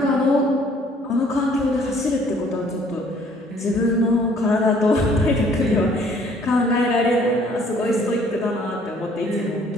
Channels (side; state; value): both; normal; correlation 0.59